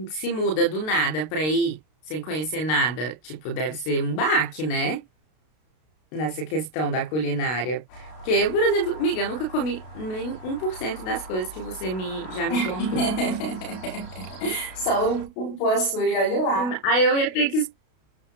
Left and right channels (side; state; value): right; late; 32 ms